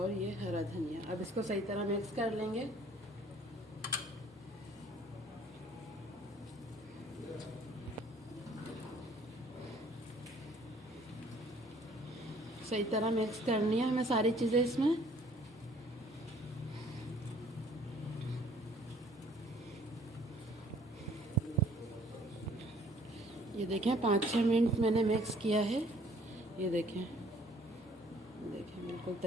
ये हरा धनिया। अब इसको सही तरह मिक्स कर लेंगे। सही तरह मिक्स करनी है हमें सारी चीज़ें इसमें। ये देखें, 5-6 मिनट मैंने मिक्स किया है। ये देखें, देखें बिल्कुल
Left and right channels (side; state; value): both; normal; correlation 0.58